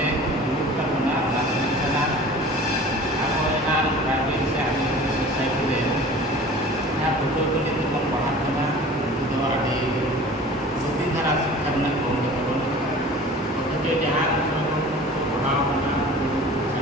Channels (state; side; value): normal; both; correlation 0.42